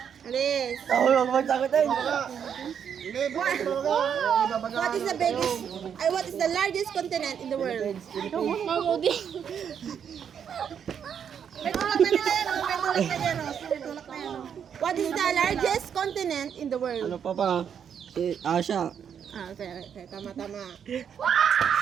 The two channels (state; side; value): quieter; left; 8.0 dB